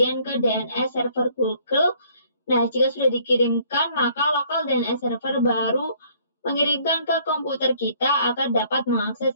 ke DNS server Google. Nah, jika sudah dikirimkan, maka local DNS server baru mengirimkan ke komputer kita agar dapat mengakses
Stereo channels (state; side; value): inverted; both; correlation -0.61